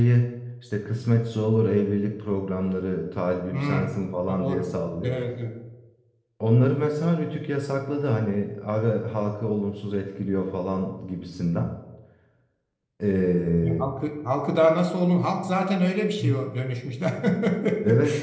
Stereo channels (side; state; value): both; identical; correlation 1.00